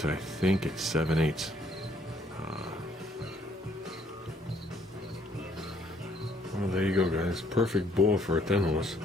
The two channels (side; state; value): both; normal; correlation 0.65